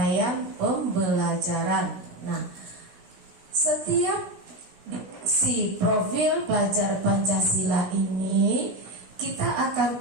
pembelajaran. Nah, setiap si profil pelajar Pancasila ini kita akan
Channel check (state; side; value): late; left; 16 ms